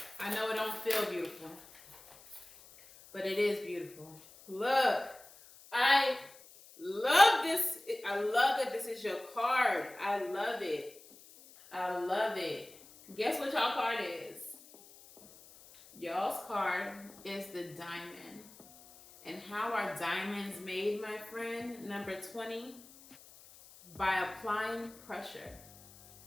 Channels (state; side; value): noise; left; hiss, 22 dB below the sound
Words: I know it don't feel beautiful, but it is beautiful. Look, I love this. I love that this is your card. I love it. I love it. Guess what y'all card is? Y'all's card is the Diamond. And how are diamonds made, my friend? Number 20, by applying pressure.